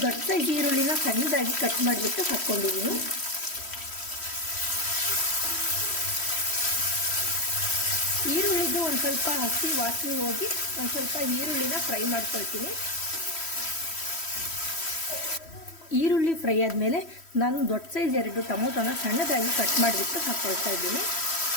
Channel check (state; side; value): late; right; 3.1 ms